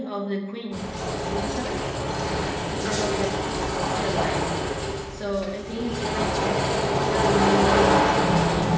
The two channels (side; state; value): both; identical; correlation 1.00